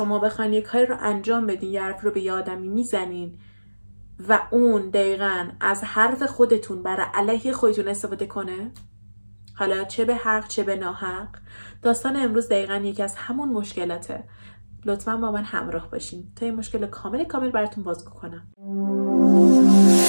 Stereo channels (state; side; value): inverted; both; correlation -1.00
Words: بخواین یک کاری رو انجام بدین، یه حرف رو به یه آدمی میزنین و اون دقیقاً از حرف خودتون برای علیه خودتون استفاده کنه؟ حالا چه به حق چه به ناحق. داستان امروز دقیقاً یکی از همون مشکلاته. لطفاً با من همراه باشین تا این مشکل کامل براتون بازگو کنم.